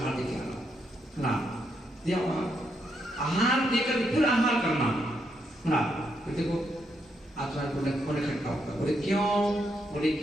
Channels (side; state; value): both; normal; correlation 0.78